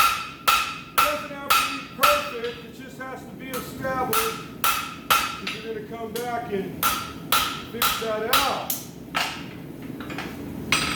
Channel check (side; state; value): both; identical; correlation 1.00